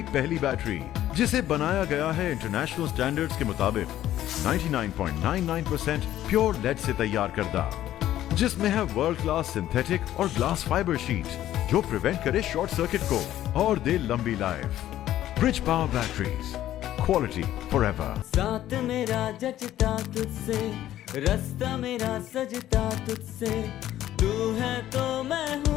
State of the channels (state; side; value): quieter; right; 12.9 dB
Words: پہلی بیٹری، جسے بنایا گیا ہے انٹرنیشنل سٹینڈرڈز کے مطابق 99.99% پیور لیڈ سے تیار کردہ، جس میں ہے ورلڈ کلاس سنتھیٹک اور گلاس فائبر شیٹ جو پریونٹ کرے شارٹ سرکٹ کو اور دے لمبی life. Bridge power batteries, quality for ever. ساتھ میرا جچتا تجھ سے، رستہ میرا سجتا تجھ سے، تو ہے تو میں